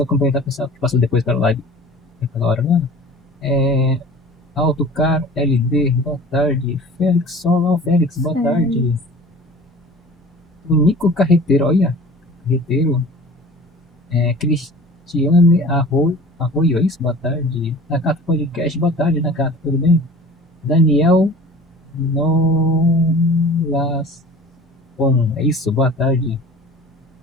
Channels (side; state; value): both; normal; correlation 0.42